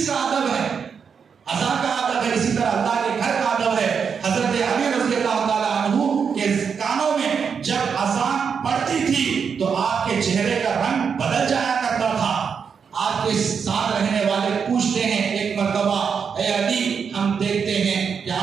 کا ادب ہے، اذان کا ادب ہے، اسی طرح اللہ کے گھر کا ادب ہے. حضرت علی رضی اللہ تعالیٰ عنہ کے کانوں میں جب اذان پڑتی تھی تو آپ کے چہرے کا رنگ بدل جایا کرتا تھا. آپ کے ساتھ رہنے والے پوچھتے ہیں ایک مرتبہ، اے علی ہم دیکھتے ہیں کیا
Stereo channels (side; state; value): left; quieter; 6.4 dB